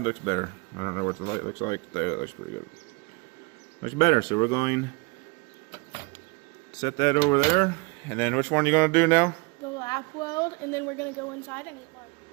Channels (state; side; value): quieter; left; 28.2 dB